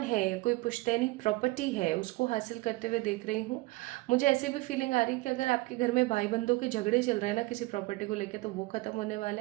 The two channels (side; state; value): left; quieter; 21.6 dB